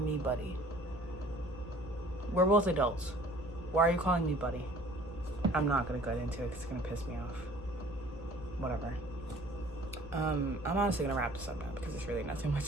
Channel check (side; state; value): both; normal; correlation 0.52